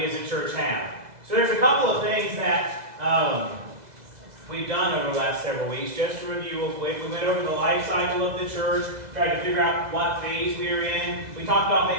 as a church have. So there's a couple of things that we've done over the last several weeks. Just to review real quick, we went over the life cycle of the church, tried to figure out what phase we were in. We talked about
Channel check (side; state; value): left; late; 2.0 ms